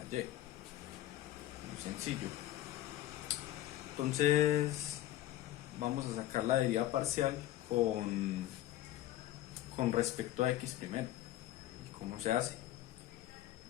y. Muy sencillo. Entonces vamos a sacar la derivada parcial con respecto a x primero. ¿Y cómo se hace?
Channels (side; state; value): right; quieter; 14.1 dB